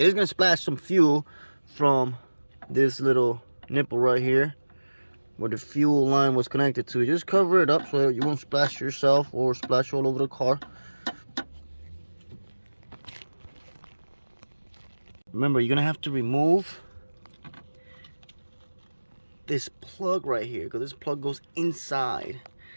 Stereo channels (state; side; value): inverted; both; correlation -1.00